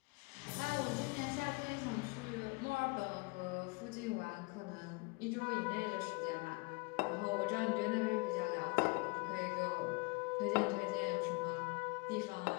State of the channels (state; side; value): quieter; right; 28.7 dB